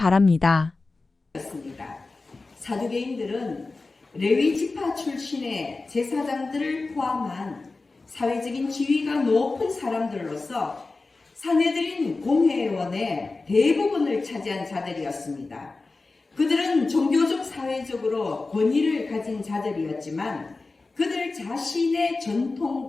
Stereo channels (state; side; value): quieter; right; 3.6 dB